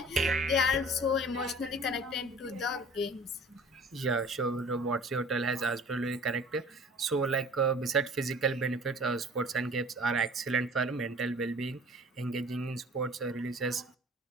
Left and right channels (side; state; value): both; normal; correlation 0.47